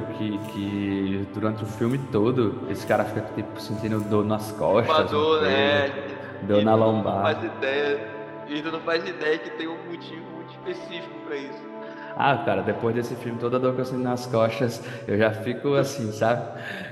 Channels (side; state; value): both; identical; correlation 1.00